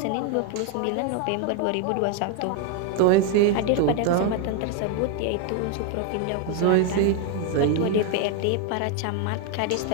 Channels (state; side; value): different; both; correlation 0.01